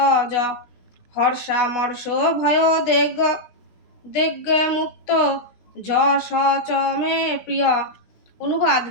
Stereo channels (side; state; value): right; late; 16 ms